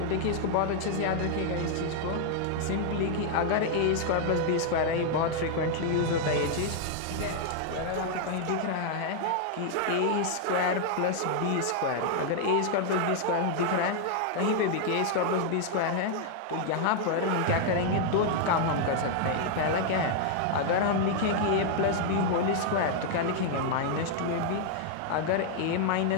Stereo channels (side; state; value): both; different; correlation 0.00